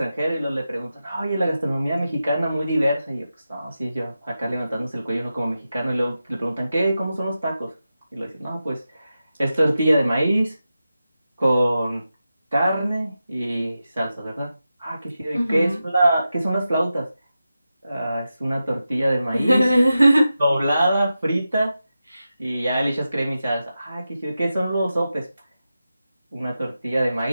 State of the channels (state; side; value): inverted; both; correlation -0.91